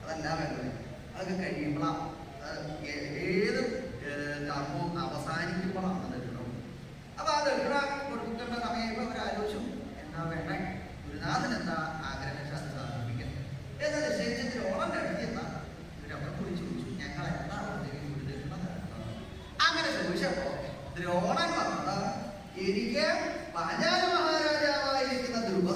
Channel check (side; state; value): both; identical; correlation 1.00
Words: അതല്ല വേണ്ടത്. അതൊക്കെ കഴിയുമ്പോഴാണ് ഏത് കർമ്മവും അവസാനിക്കുമ്പോഴാണ് ദക്ഷിണ. അപ്പൊ ആ ദക്ഷിണ കൊടുക്കേണ്ട സമയം അവരാലോചിച്ചു എന്താ വേണ്ടേ, ഗുരുനാഥൻ എന്താ ആഗ്രഹം അത് സാധിപ്പിക്കുന്നത് എന്ന് നിശ്ചയിച്ച് ദ്രോണന്റെ അടുത്ത് എന്താ ഇവരവിടെ കുറിച്ച് ചോദിച്ചു, ഞങ്ങൾ എന്താ ഗുരുദക്ഷിണ തരുന്നത്? അങ്ങനെ ചോദിച്ചപ്പോ ദ്രോണൻ പറഞ്ഞത്, എനിക്ക് പാഞ്ചാല മഹാരാജാവായിരിക്കുന്ന